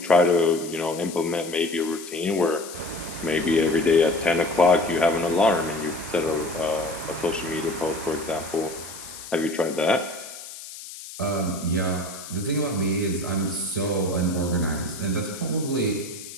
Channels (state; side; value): noise; left; hiss, 13 dB below the sound